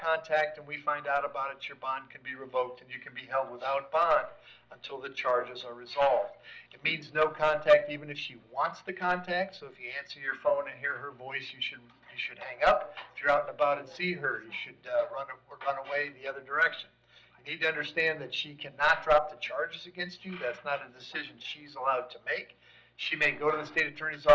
and we find out about it, your bond can be revoked and you can be held without bond until the charges are resolved. It means no contact even if she wants the contact. So if you answer your phone and hear her voice, you should hang up. If you're out and about and see her, you should run away the other direction. You need to understand that she cannot drop the charges against you. That's not a decision she's allowed to make. She may go to the state attorney's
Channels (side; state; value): both; identical; correlation 1.00